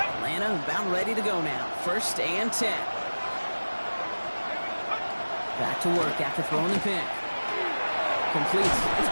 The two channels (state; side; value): inverted; both; correlation -1.00